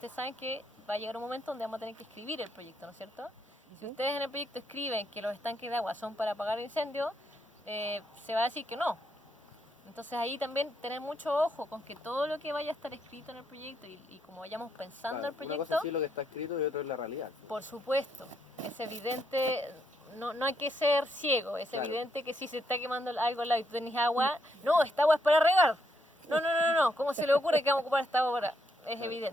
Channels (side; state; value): both; normal; correlation 0.76